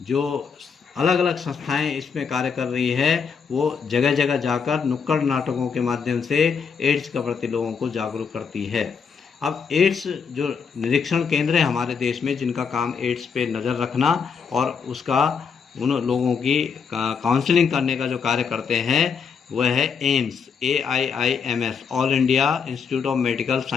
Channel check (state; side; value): quieter; right; 6.2 dB